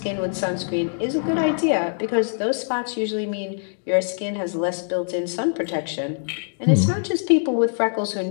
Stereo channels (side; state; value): right; silent; digital silence